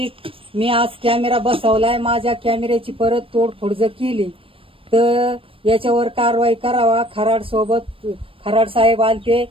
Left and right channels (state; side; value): late; left; 0.26 ms